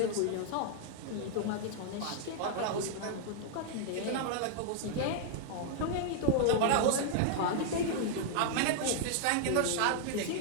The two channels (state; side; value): different; both; correlation 0.00